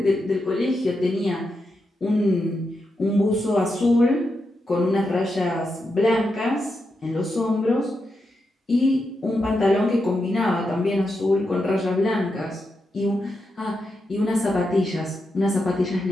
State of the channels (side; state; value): both; normal; correlation 0.86